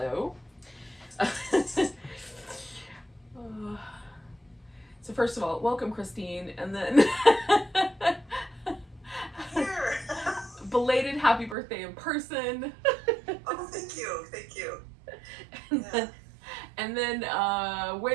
So first of all, welcome, Christine, and then belated happy birthday in person. Oh, thank you. And then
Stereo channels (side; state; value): left; drops out; at 11.6 s